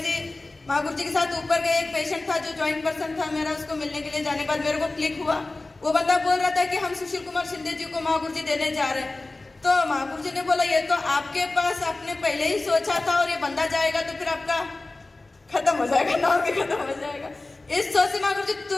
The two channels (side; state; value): right; quieter; 3.1 dB